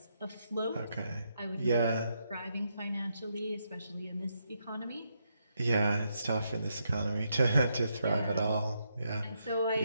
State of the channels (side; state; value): both; inverted; correlation -0.80